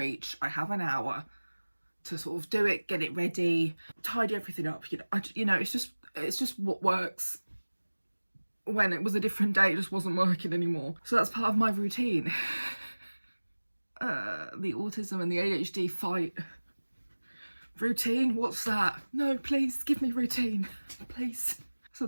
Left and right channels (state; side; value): inverted; both; correlation -1.00